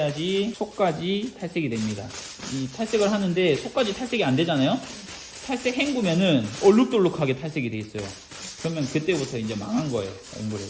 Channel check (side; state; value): both; identical; correlation 1.00